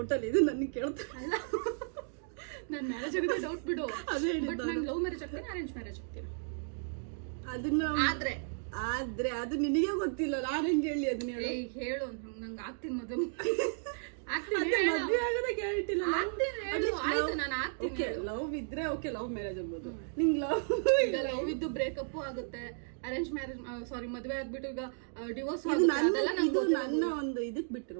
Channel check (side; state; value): left; silent; digital silence